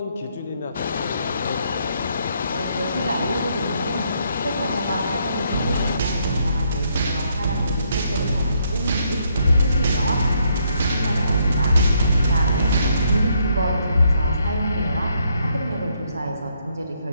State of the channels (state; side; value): inverted; both; correlation -0.73